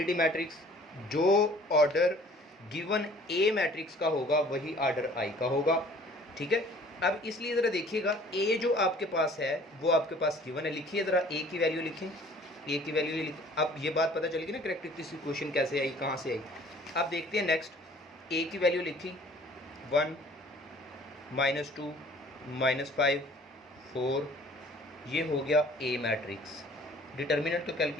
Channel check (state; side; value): normal; both; correlation 0.52